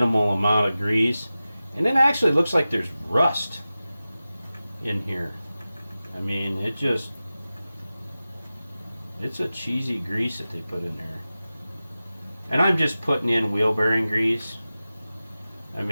amount of grease. And it actually looks like there's rust in here. I mean, it's a cheesy grease that they put in there. And I'm just putting in wheel bearing grease. I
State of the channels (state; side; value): inverted; both; correlation -0.95